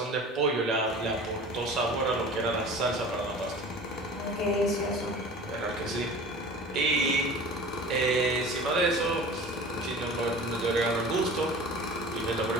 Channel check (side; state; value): both; normal; correlation 0.40